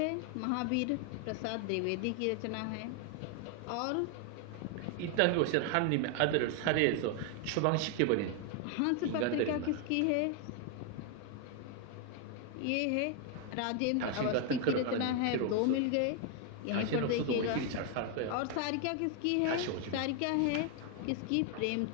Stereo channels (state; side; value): different; both; correlation 0.00